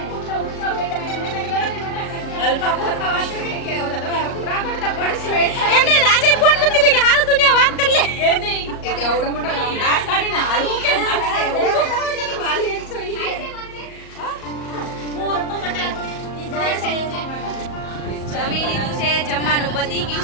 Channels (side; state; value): right; late; 38 ms